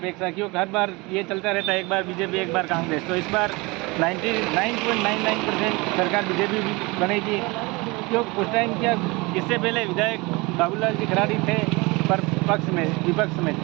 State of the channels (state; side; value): quieter; left; 24.9 dB